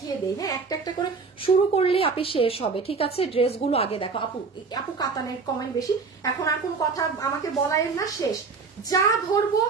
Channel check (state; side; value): quieter; left; 4.7 dB